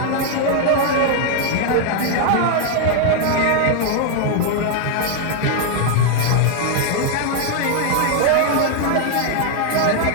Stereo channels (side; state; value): both; different; correlation 0.00